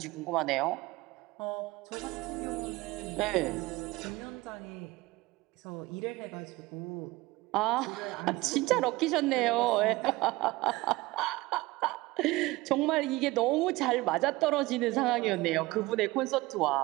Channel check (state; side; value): quieter; left; 20.3 dB